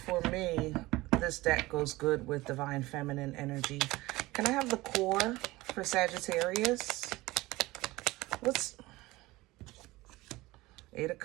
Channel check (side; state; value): left; quieter; 19.7 dB